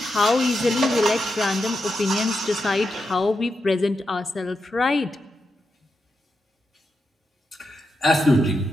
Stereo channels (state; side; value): normal; both; correlation 0.86